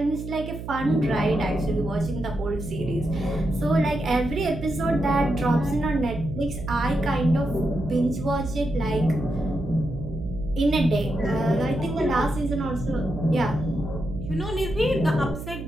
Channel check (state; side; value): noise; right; hum, 9 dB below the sound